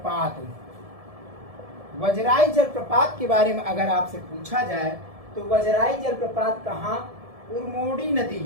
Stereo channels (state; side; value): late; left; 1.7 ms